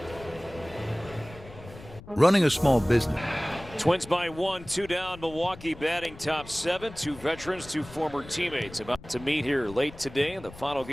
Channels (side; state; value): left; noise; rumble, 17 dB below the sound